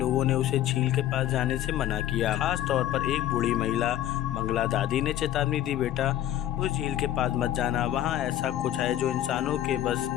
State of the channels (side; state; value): right; quieter; 12.5 dB